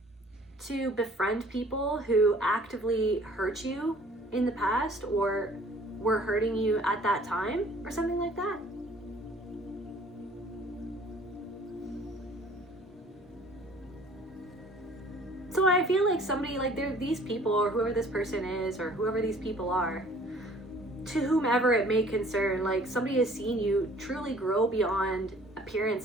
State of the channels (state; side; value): normal; both; correlation 0.53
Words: to befriend people who actively hurt you in the past, or were hurting you at that time, or something like that. So I feel like somebody, like these people, or whoever this person is, or whoever these people are, to whomever it may concern, like somebody has seen you truly grow beyond